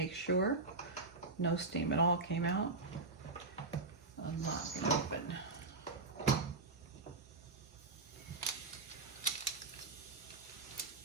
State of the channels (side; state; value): left; quieter; 3.6 dB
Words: sure no steam at all came out. Unlock it open.